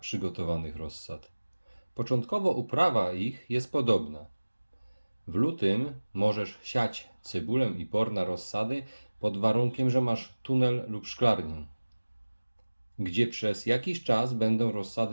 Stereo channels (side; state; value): both; inverted; correlation -1.00